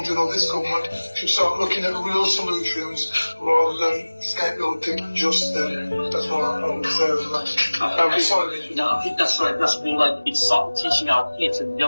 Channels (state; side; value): inverted; both; correlation -1.00